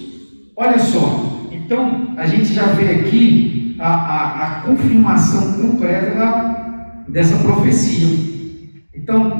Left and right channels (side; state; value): both; inverted; correlation -1.00